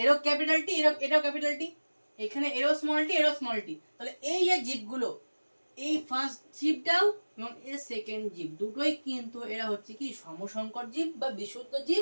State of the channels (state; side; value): inverted; both; correlation -1.00